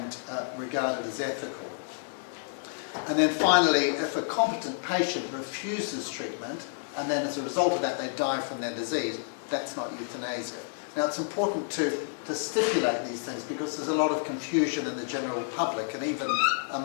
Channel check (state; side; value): silent; right; digital silence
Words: regarded as ethical. And then finally, if a competent patient refuses treatment and then as a result of that they die from their disease, that's not euthanasia. Now it's important to stipulate these things because there's a lot of confusion in the general public and even